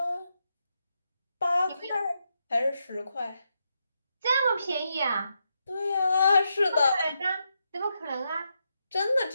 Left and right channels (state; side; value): inverted; both; correlation -0.83